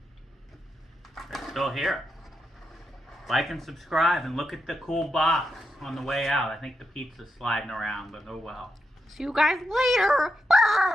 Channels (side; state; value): both; normal; correlation 0.85